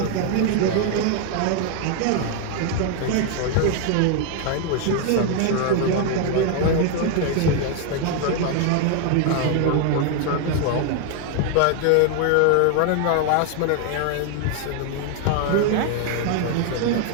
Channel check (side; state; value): both; different; correlation 0.01